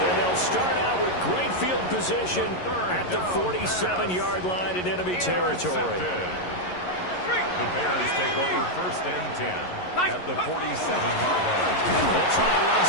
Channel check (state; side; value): late; right; 11 ms